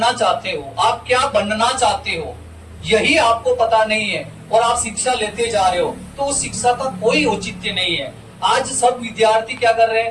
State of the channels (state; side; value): identical; both; correlation 1.00